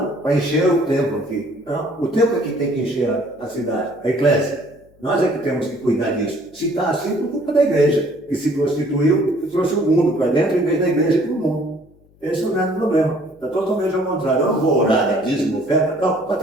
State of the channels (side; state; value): left; noise; hum, 30 dB below the sound